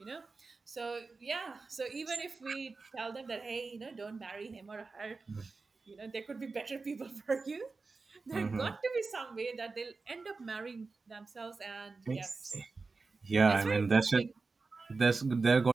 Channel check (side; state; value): left; quieter; 4.1 dB